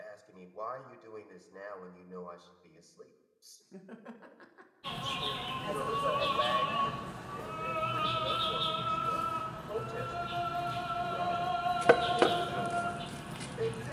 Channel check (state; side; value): identical; both; correlation 1.00